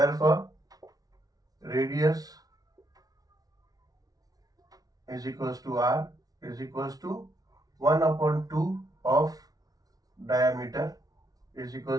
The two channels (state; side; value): late; left; 0.18 ms